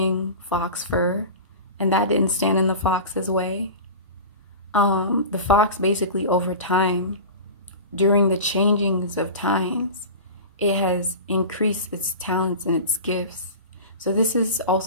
fox fur, and that didn't stand in the fox's way. The fox basically over time, during the changings of times, it has increased its talents and its gifts. So this is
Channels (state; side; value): inverted; both; correlation -0.32